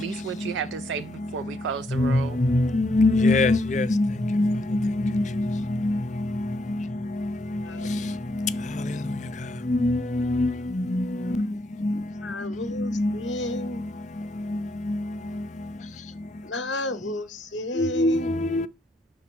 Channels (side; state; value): both; normal; correlation 0.75